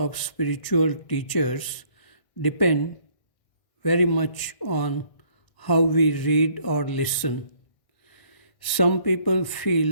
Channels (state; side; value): late; right; 1.6 ms